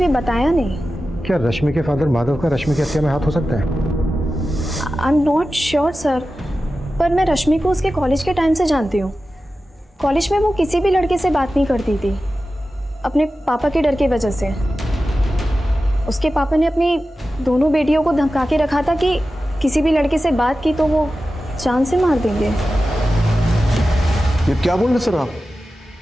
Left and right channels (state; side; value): normal; both; correlation 0.94